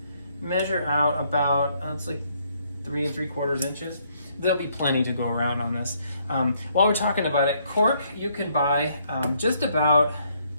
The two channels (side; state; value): both; inverted; correlation -0.70